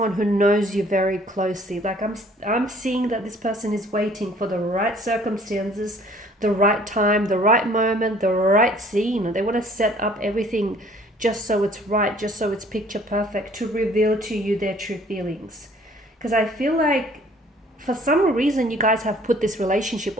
who knows you very closely. Like I'm seeing that this person is waiting for the right circumstances, the right time, the right moment, the right scene. They want to set up everything just so it's right, just so it's picture perfect, to reveal to you their true feelings. Because I feel like for some reason you guys have put this relationship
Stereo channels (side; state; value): both; normal; correlation 0.56